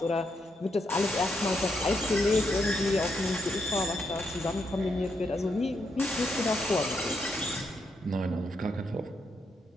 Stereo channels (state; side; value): normal; both; correlation 0.80